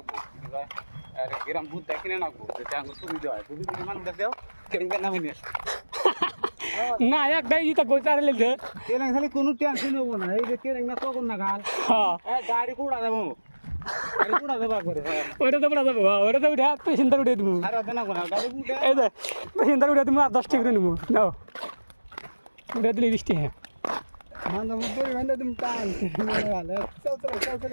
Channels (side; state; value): both; inverted; correlation -1.00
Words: গ্রাম ভূত কিনে নাকবো সুবিধা হয় বুঝলি মানুষ দেখো নামে নিয়ে না একটাই ইটা কই চারে লেছে কেন খালি কোনো টেনশন হবো না এই যে কেন না তখন না গাল গাড়ি কুড়া যাবো গাড়ি কুড়া যাবো করে ওইটা তো পড়া যাবো ওইটা তো উঠে পেশেন্টার উঠে দিব আর হবে না কোনা গাড়ি উঠে এই যে পেশেন্টার উঠে তুমি আর 10 টাকা করে নিব নাও উঠে দিলে 20 টাকা মান্দা মুদরি মান্দা তুমি টান চল